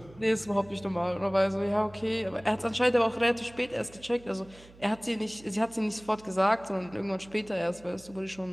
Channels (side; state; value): right; noise; hum, 23 dB below the sound